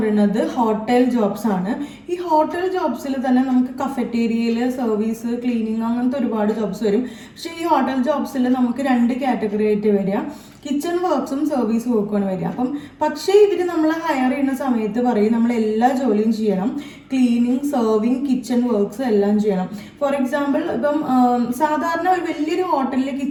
ഹോട്ടൽ ജോബ്സ് ആണ്. ഈ ഹോട്ടൽ ജോബ്സിൽ തന്നെ നമുക്ക് കഫറ്റേരിയയിൽ സർവീസ്, ക്ലീനിങ്, അങ്ങനത്തെ ഒരുപാട് ജോബ്സ് വരും. പക്ഷേ ഈ ഹോട്ടൽ ജോബ്സിൽ നമുക്ക് 2 കാറ്റഗറി ആയിട്ട് വരിക, കിച്ചൺ വർക്ക്സും സർവീസ് വർക്കുമാണ് വരിക. അപ്പം പക്ഷേ ഇവർ നമ്മളെ ഹയർ ചെയ്യുന്ന സമയത്ത് പറയും നമ്മൾ എല്ലാ ജോലിയും ചെയ്യണം, ക്ലീനിങ്, സർവിങ്, കിച്ചൺ വർക്ക്സ് എല്ലാം ചെയ്യണം. ഫോർ എക്സാമ്പിൾ ഇപ്പം സാധാരണ ഒരു വലിയൊരു ഹോട്ടലിൽ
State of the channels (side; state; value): both; identical; correlation 1.00